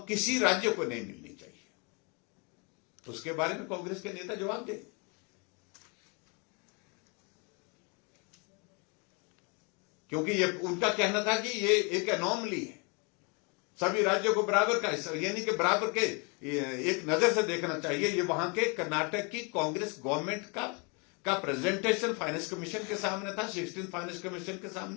किसी राज्य को नहीं मिलनी चाहिए। तो उसके बारे में कांग्रेस के नेता जवाब दे, क्योंकि ये उनका कहना था कि ये एक एनोमली है, सभी राज्यों को बराबर का, यानी कि बराबर के एक नजर से देखना चाहिए। ये वहां के कर्नाटक की कांग्रेस गवर्नमेंट का प्रेजेंटेशन फाइनेंस कमीशन के सामने था, 16 फाइनेंस कमीशन के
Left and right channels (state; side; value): quieter; right; 32.8 dB